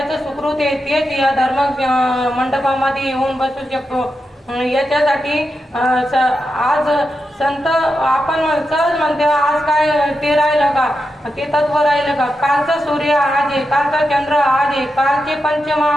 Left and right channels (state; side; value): normal; both; correlation 0.88